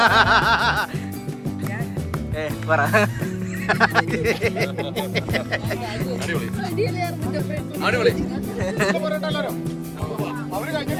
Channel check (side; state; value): both; identical; correlation 1.00